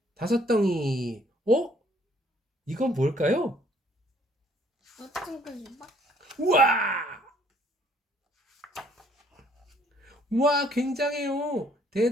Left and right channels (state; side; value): normal; both; correlation 0.63